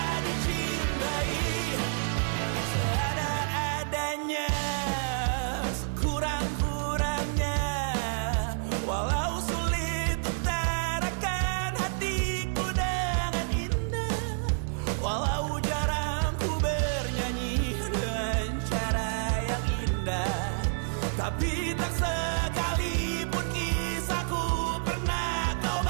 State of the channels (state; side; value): silent; left; 59 dB below the other